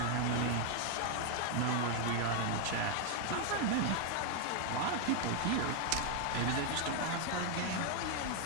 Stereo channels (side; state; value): both; different; correlation 0.00